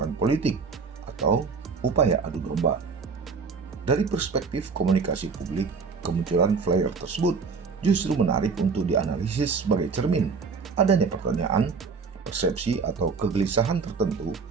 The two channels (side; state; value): left; quieter; 5.0 dB